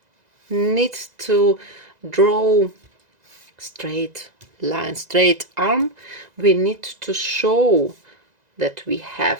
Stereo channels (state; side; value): late; left; 2.0 ms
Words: need to draw straight line, straight arm, we need to show that we